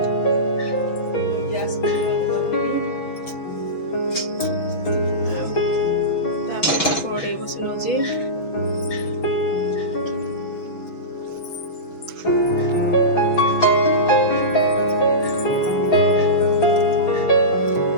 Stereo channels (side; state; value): right; late; 6.2 ms